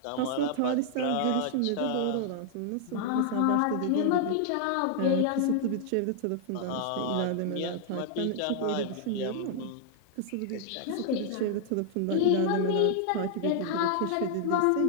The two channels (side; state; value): both; different; correlation -0.01